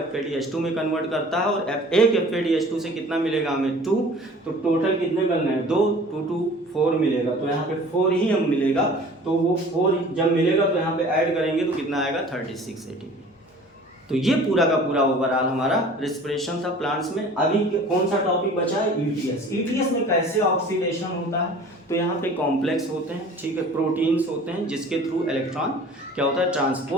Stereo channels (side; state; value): both; normal; correlation 0.46